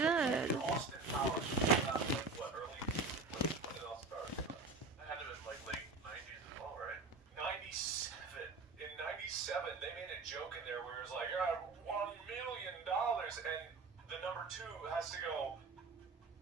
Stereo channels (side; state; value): left; quieter; 3.9 dB